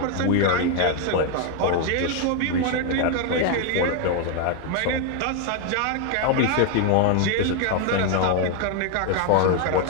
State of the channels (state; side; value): different; both; correlation 0.01